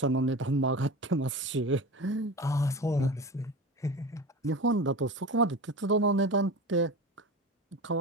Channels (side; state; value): both; normal; correlation 0.30